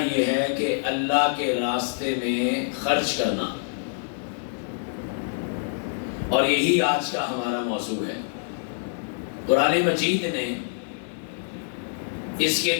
یہ ہے کہ اللہ کے راستے میں خرچ کرنا، اور یہی آج کا ہمارا موضوع ہے۔ قرآن مجید نے اس کے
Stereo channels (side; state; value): right; silent; 61 dB below the other